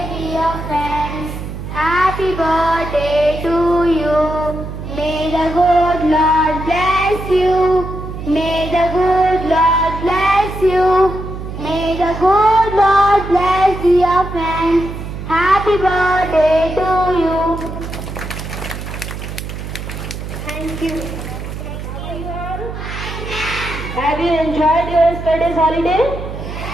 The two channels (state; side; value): noise; right; hum, 8 dB below the sound